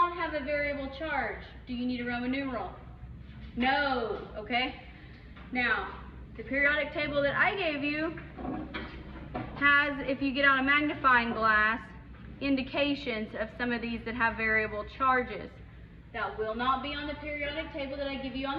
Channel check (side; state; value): both; identical; correlation 1.00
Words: have a variable charge, do you need a Roman numeral? No, okay? Now, the periodic table that I gave you has, if you get out a magnifying glass, indications of some of these that have variable charges. That will not be on the periodic table that I give you on